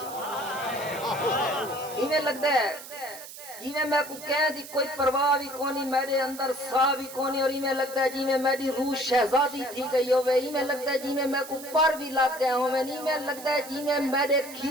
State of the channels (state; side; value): noise; right; hiss, 14 dB below the sound